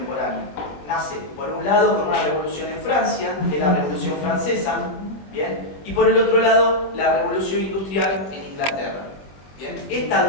Nace, por un lado, con una revolución en Francia, que es la Revolución Francesa, ¿bien?, y por el otro lado, la revolución industrial en Inglaterra. ¿Bien? Esta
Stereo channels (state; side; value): late; right; 20 ms